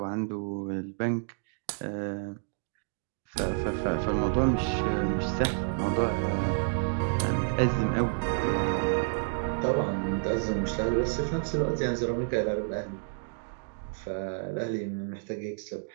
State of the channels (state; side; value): silent; left; digital silence